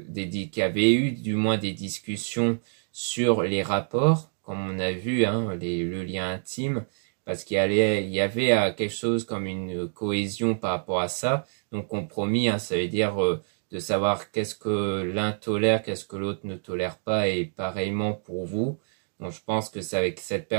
avait eu du moins des discussions sur les rapports, comme on a vu, hein, le lien intime, parce qu'il y avait quelque chose comme une cohésion par rapport à ça. Donc compromis, hein, ça veut dire de savoir qu'est-ce que l'un tolère, qu'est-ce que l'autre ne tolère pas, et pareillement pour vous. Donc je pense que c'est avec cette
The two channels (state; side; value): silent; left; 60 dB below the other